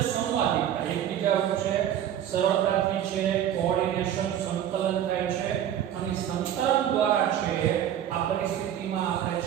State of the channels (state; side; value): quieter; left; 10.5 dB